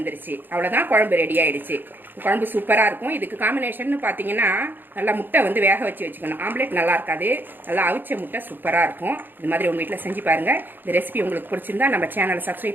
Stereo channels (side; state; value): left; late; 0.093 ms